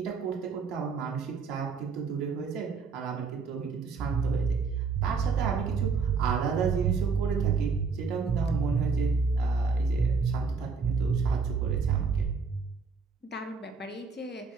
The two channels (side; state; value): left; quieter; 5.1 dB